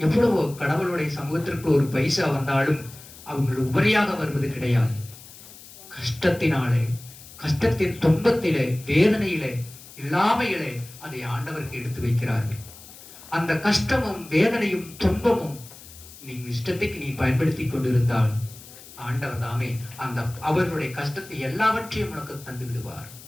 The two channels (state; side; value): noise; left; hiss, 18 dB below the sound